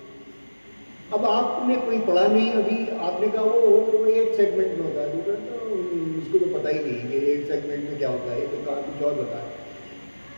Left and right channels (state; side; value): inverted; both; correlation -1.00